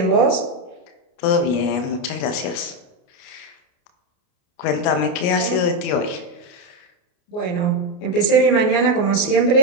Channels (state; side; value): late; right; 29 ms